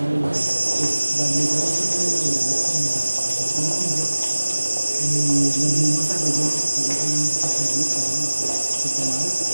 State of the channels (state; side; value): inverted; both; correlation -1.00